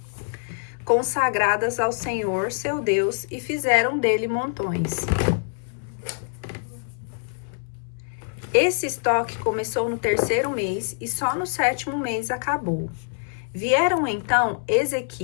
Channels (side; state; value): right; silent; 62 dB below the other